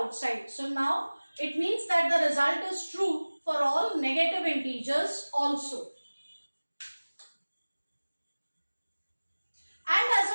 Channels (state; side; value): inverted; both; correlation -1.00